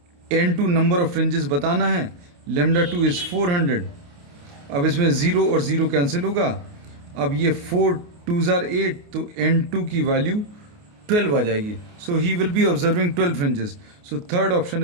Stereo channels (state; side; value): late; left; 28 ms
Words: n2 number of fringes बताना है, lambda 2 इज 400. अब इसमें 0 और 0 कैंसिल होगा. अब ये 4 2s are 8, तो n2 की वैल्यू 12 आ जाएगी. So he will be observing 12 fringes. So third option